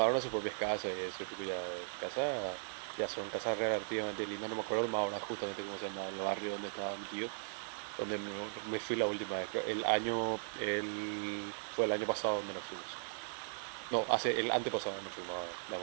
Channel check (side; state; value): left; silent; digital silence